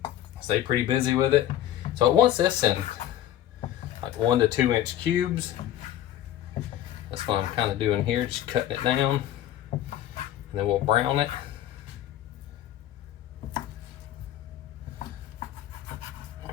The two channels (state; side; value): quieter; right; 12.1 dB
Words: Stay pretty busy with it. So it wants this in like 1 to 2 inch cubes. That's what I'm kind of doing here, just cutting it down, and then we'll brown it.